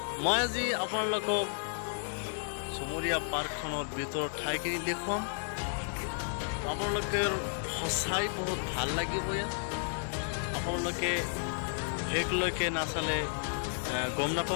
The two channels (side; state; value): right; silent; digital silence